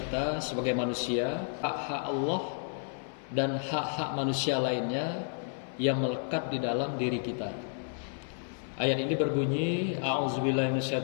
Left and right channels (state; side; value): silent; right; 57 dB below the other